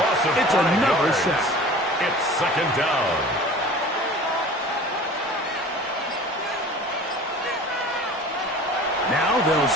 It's another sack. It's second down. Now they'll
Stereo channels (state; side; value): normal; both; correlation 0.42